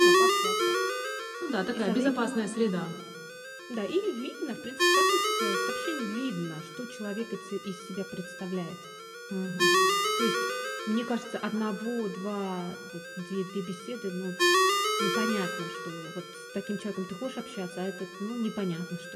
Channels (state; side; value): identical; both; correlation 1.00